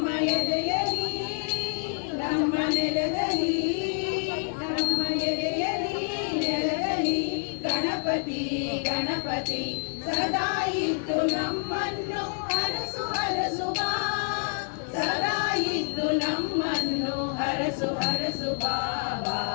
ಎದೆಯಲಿ ನಮ್ಮ ನೆಲದಲ್ಲಿ ನಮ್ಮ ಎದೆಯಲಿ ನೆಲದಲ್ಲಿ ಗಣಪತಿ ಗಣಪತಿ ಸದಾ ಇದ್ದು ನಮ್ಮನ್ನು ಹರಸು ಹರಸು ಬಾ ಸದಾ ಇದ್ದು ನಮ್ಮನ್ನು ಹರಸು ಹರಸು ಬಾ ಬಾ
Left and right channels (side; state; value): right; silent; digital silence